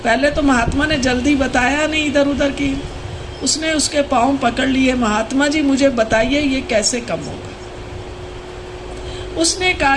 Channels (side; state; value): both; identical; correlation 1.00